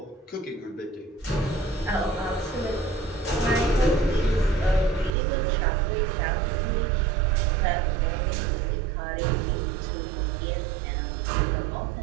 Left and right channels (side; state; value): left; drops out; at 5.1 s